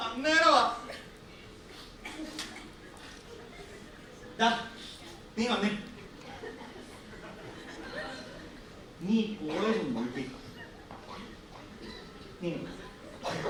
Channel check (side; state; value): both; identical; correlation 1.00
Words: അന്നേരമാ. നീ വന്നേ. നീ കോളേജ് നോക്കി.